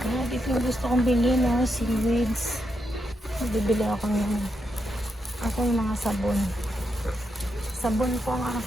Dito yung gusto kong bilhin, no? Seaweeds. Bibili ako ng yung mga sabon. Sabon po ang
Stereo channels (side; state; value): both; normal; correlation 0.82